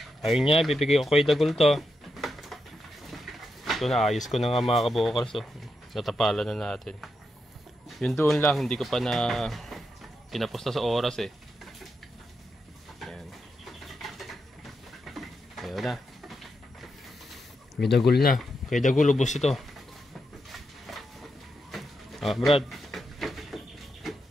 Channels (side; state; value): both; normal; correlation 0.85